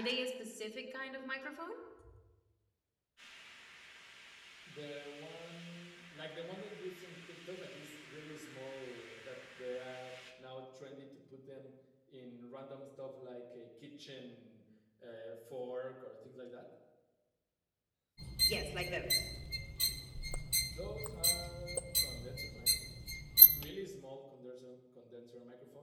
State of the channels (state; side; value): identical; both; correlation 1.00